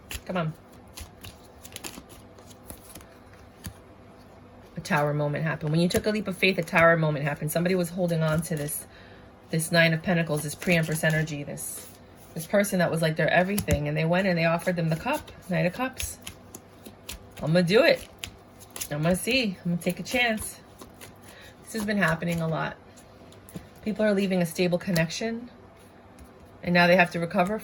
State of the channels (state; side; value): identical; both; correlation 1.00